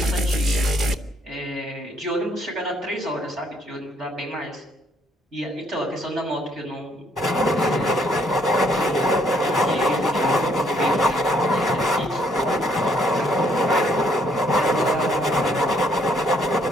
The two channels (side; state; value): both; normal; correlation 0.68